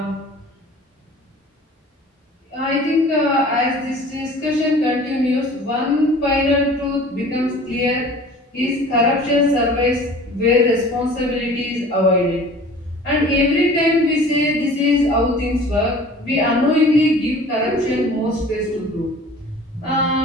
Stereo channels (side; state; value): both; normal; correlation 0.45